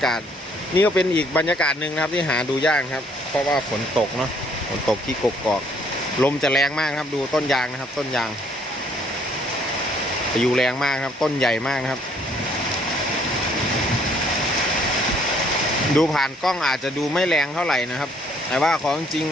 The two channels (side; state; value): both; normal; correlation 0.64